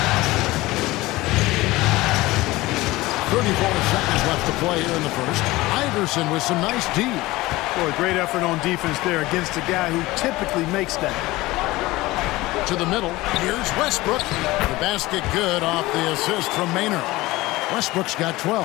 34 seconds left to play here in the first. Iverson with some nice D. Boy, great effort on defense there against a guy who typically makes that. To the middle. Here's Westbrook. The basket good off the assist from Maynard. Westbrook's got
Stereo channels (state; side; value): quieter; right; 19.3 dB